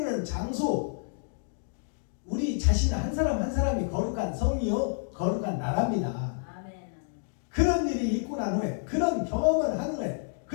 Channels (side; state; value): right; silent; digital silence